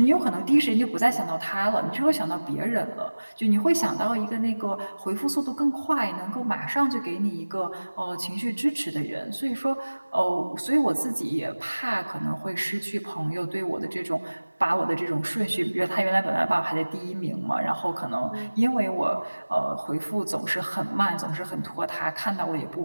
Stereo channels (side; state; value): both; inverted; correlation -1.00